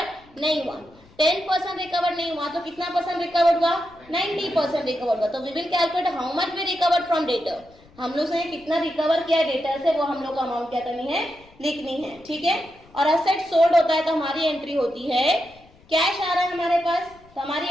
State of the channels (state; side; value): noise; left; rumble, 26 dB below the sound